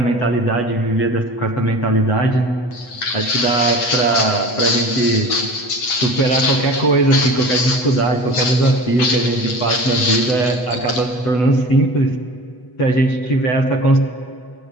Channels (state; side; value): late; right; 8.1 ms